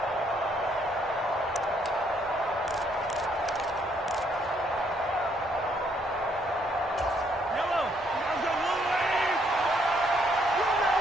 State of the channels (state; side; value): normal; both; correlation 0.70